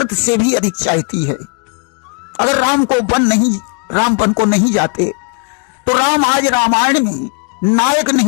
से भी अधिक चाहती है। अगर राम वन को नहीं जाते तो राम आज रामायण में नायक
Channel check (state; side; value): quieter; right; 35.6 dB